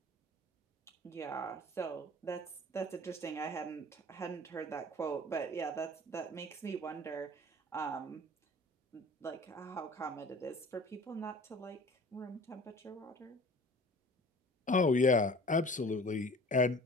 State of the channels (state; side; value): normal; both; correlation 0.45